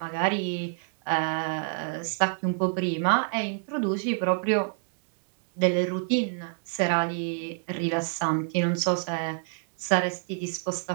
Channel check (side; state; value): left; silent; 59 dB below the other